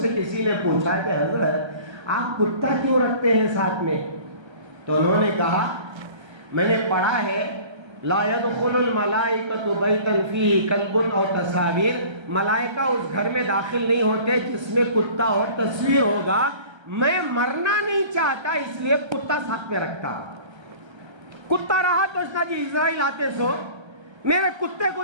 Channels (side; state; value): left; late; 1.3 ms